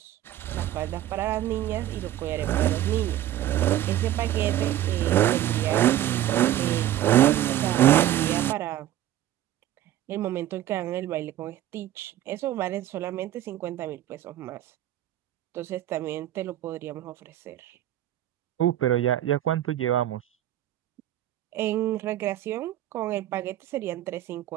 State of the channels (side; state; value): left; quieter; 12.9 dB